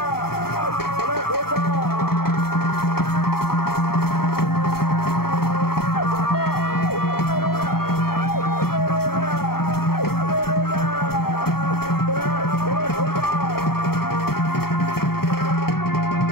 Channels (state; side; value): late; right; 0.94 ms